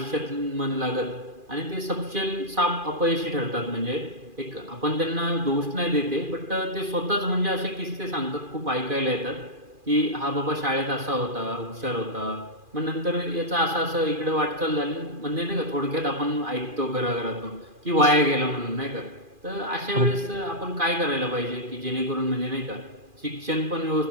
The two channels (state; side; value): late; left; 2.4 ms